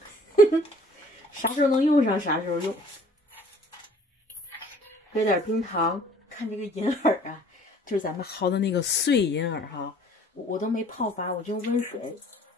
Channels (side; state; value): both; normal; correlation 0.53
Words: 啥时候能用上啥时候用。搁点冰糖。看这个银耳啊，就是咱们薅的那个碎银耳哈，我都没泡发，我就用温水，